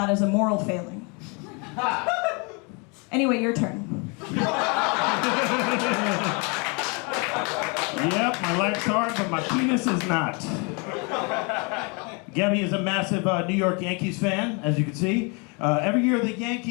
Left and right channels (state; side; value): quieter; right; 32.4 dB